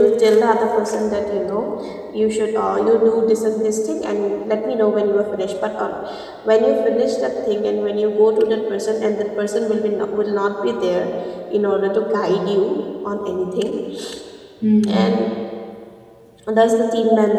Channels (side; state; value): both; identical; correlation 1.00